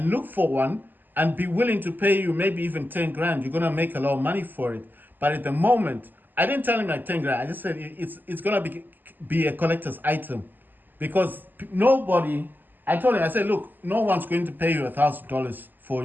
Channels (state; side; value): late; left; 0.088 ms